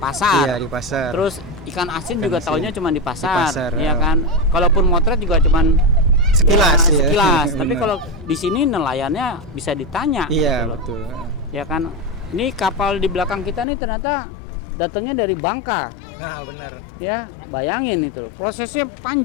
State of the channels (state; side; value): drops out; right; at 13.7 s